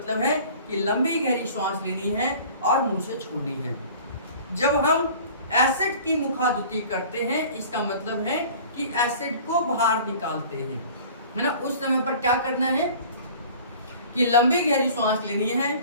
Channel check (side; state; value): both; inverted; correlation -0.45